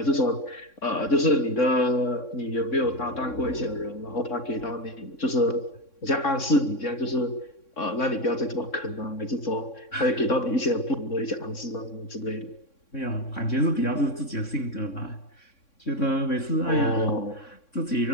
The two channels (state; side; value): late; right; 3.6 ms